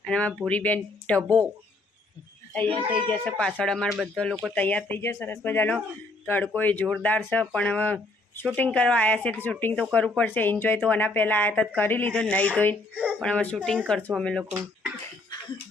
અને અમારા ભૂરીબેન ઢબો તૈયાર થઈ જશે. પાછળ અમારા બધા લોકો તૈયાર થઈ જશે. સરસ મજાનો તડકો એ જોરદાર છે, પણ હવે શૂટિંગ કરવા આવ્યા છે તો શૂટિંગ તો કરવું પડશે. એન્જોય તો આના પહેલાં આવ્યા હતા કરી લીધો, નહીં ધોઈને, પણ હવે શૂટિંગ કરશું અમે લોકો.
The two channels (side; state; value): right; quieter; 3.0 dB